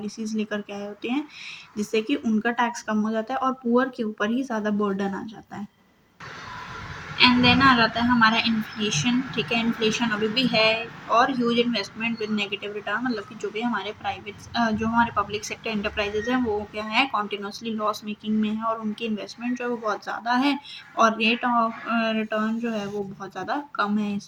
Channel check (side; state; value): both; identical; correlation 1.00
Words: लेकर के आए होते हैं जिससे कि उनका टैक्स कम हो जाता है और पुअर के ऊपर ही ज़्यादा बर्डन आ जाता है। एंड देन आ जाता है हमारा इन्फ्लेशन, ठीक है। इन्फ्लेशन अभी भी है और huge investment with negative return मतलब कि जो भी हमारे जो हमारे पब्लिक सेक्टर एंटरप्राइजेज हैं वो क्या है, कॉन्टिन्यूसली लॉस मेकिंग में है और उनकी इन्वेस्टमेंट जो है वो बहुत ज़्यादा है और रेट ऑफ रिटर्न जो है वो बहुत ज़्यादा कम है इस